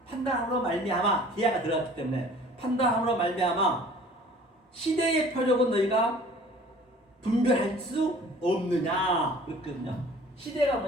말미암아, 디아가 들어갔기 때문에 판단함으로 말미암아 시대의 표적은 너희가 분별할 수 없느냐 그랬거든요. 시대가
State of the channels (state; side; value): normal; both; correlation 0.49